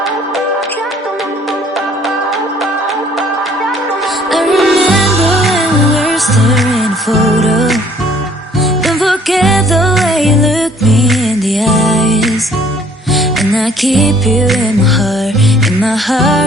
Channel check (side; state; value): both; normal; correlation 0.59